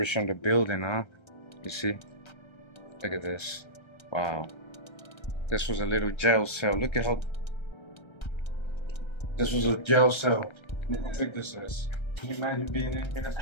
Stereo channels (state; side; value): late; right; 1.3 ms